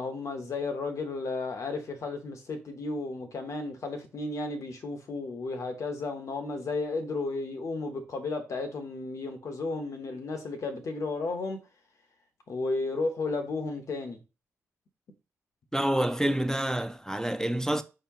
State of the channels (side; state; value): both; normal; correlation 0.81